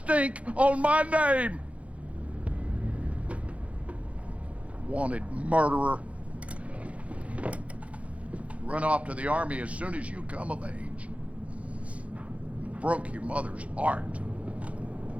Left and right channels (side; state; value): left; late; 0.064 ms